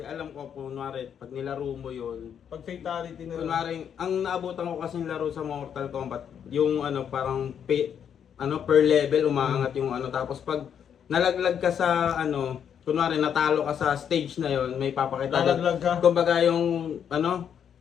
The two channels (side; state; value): right; quieter; 8.3 dB